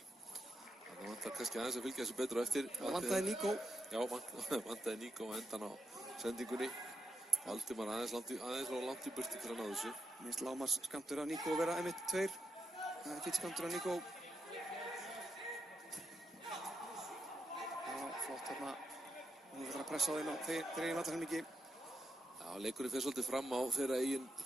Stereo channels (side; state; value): both; normal; correlation 0.84